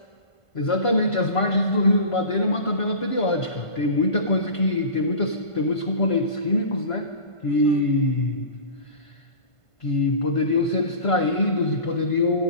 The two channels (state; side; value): late; right; 1.5 ms